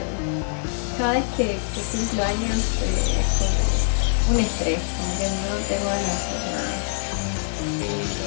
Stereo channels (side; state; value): right; silent; digital silence